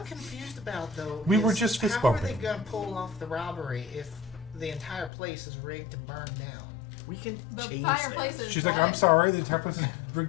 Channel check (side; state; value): right; drops out; at 5.1 s